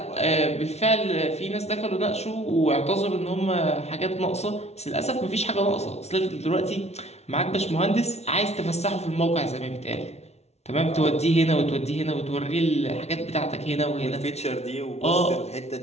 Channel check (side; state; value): right; late; 0.31 ms